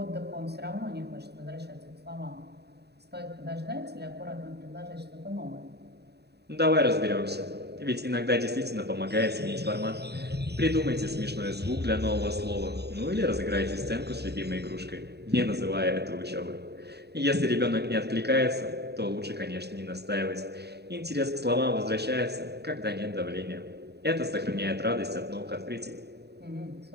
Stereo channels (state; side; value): late; left; 0.48 ms